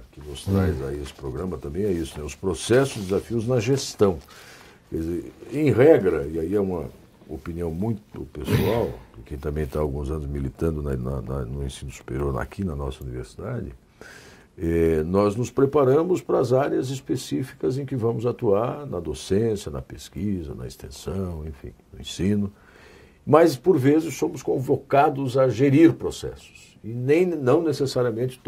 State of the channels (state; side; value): identical; both; correlation 1.00